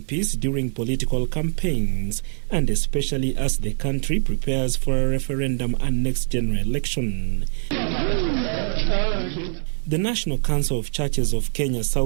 during political campaigns, and especially as the country prepares for a referendum and next general election. The National Council of Churches of Kenya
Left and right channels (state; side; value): silent; left; 63 dB below the other